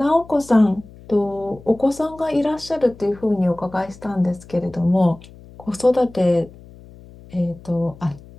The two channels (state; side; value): noise; left; hum, 21 dB below the sound